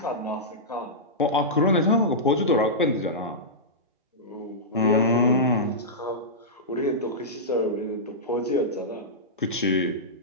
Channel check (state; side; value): normal; both; correlation -0.14